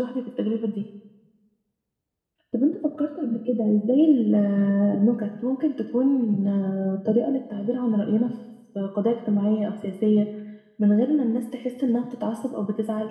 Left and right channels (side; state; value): both; identical; correlation 1.00